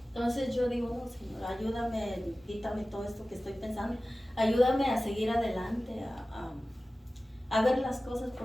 Entonces yo digo, no, Señor, ayúdame, quítame todo esto que estoy pensando, ayúdame a seguir adelante, a ver las cosas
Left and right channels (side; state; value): both; normal; correlation 0.96